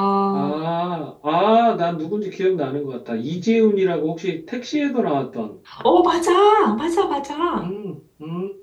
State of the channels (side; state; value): both; identical; correlation 1.00